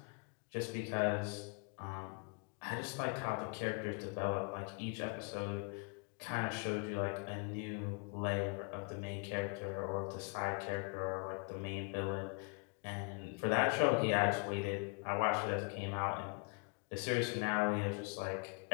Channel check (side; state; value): right; quieter; 38.6 dB